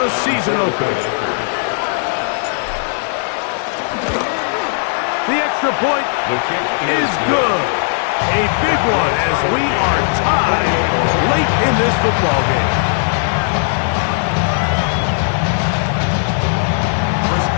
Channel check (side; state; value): right; silent; 68 dB below the other